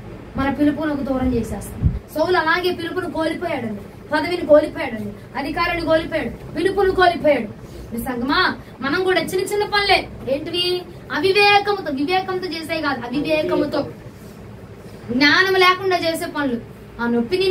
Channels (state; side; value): identical; both; correlation 1.00